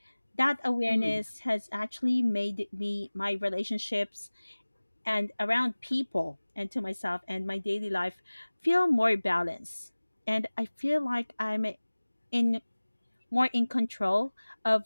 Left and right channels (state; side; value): inverted; both; correlation -1.00